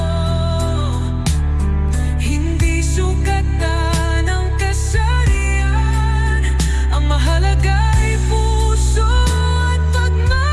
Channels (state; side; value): identical; both; correlation 1.00